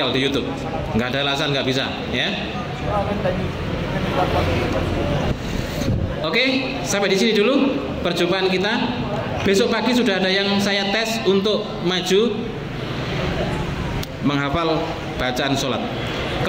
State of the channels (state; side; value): identical; both; correlation 1.00